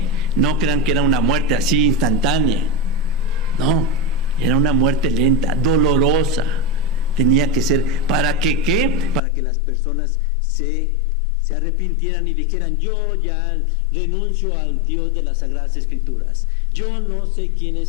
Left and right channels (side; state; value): right; drops out; at 9.2 s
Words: No crean que era una muerte así instantánea. No, era una muerte lenta, dolorosa. Tenía que ser, ¿para que qué? Para que las personas se arrepintieran y dijeran, yo ya renuncio al Dios de las Sagradas Escrituras. Yo no sé quién